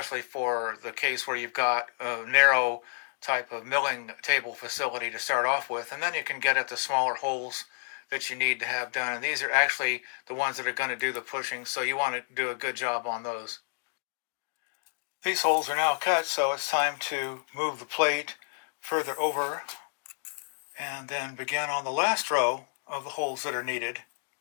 for the case where you've got a narrow type of milling table facility to start off with, and then you can get at the smaller holes that you need to have done. And these are actually the ones that are going to do the pushing, so you want to do a good job on those. These holes are now cut, so it's time to move the plate further over and then begin on the last row of the holes that are needed.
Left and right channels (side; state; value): right; silent; digital silence